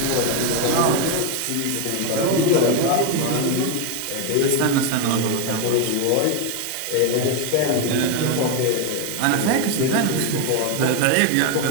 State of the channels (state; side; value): different; both; correlation 0.02